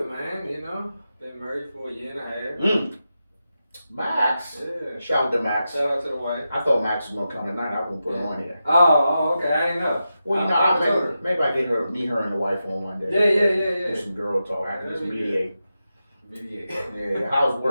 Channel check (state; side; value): inverted; both; correlation -0.90